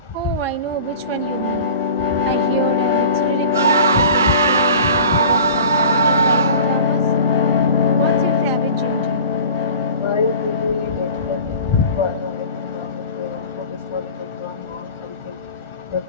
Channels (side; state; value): both; inverted; correlation -0.40